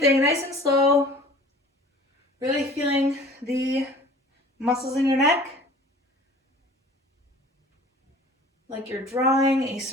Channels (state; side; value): normal; both; correlation 0.46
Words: nice and slow. Really feeling the muscles in your neck. Like you're drawing a